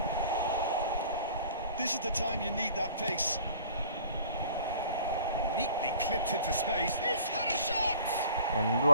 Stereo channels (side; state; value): both; inverted; correlation -0.49